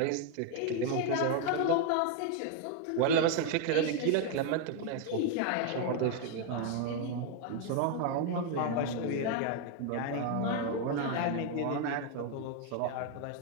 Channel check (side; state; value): both; different; correlation 0.00